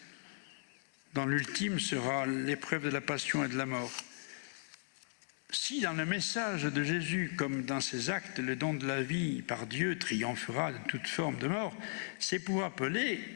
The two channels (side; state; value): right; silent; digital silence